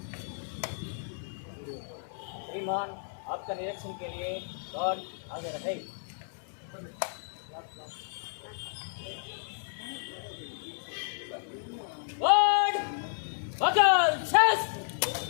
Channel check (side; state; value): right; silent; 56 dB below the other